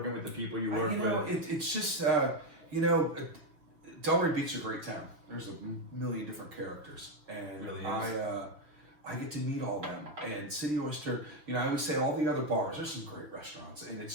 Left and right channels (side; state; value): left; late; 6.1 ms